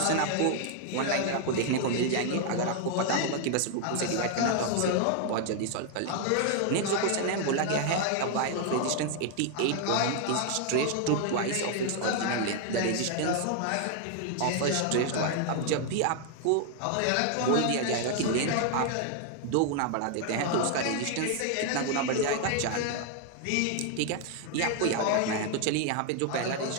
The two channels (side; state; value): both; different; correlation 0.00